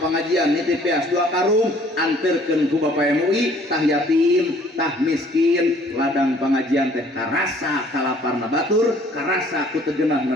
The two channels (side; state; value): both; normal; correlation 0.57